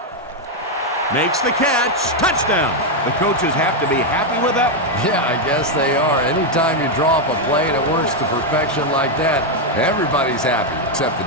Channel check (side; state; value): both; normal; correlation 0.02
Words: Makes the catch. Touchdown. The coaches have to be happy with that one. Yeah, I guess they are. Anytime you draw up a play and it works to perfection like that, everybody's happy except the